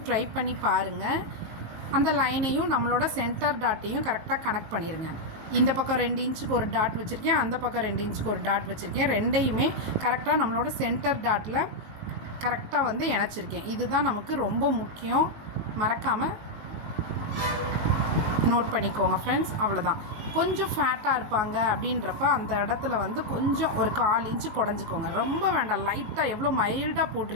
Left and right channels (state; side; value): late; left; 18 ms